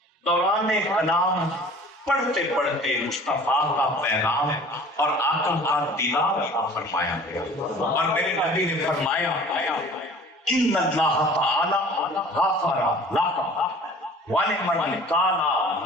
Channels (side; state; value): both; normal; correlation 0.47